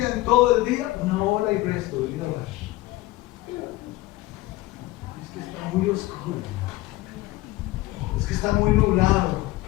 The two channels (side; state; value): right; quieter; 18.3 dB